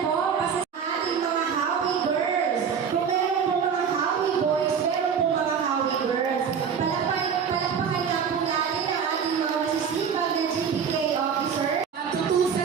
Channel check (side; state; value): left; quieter; 6.9 dB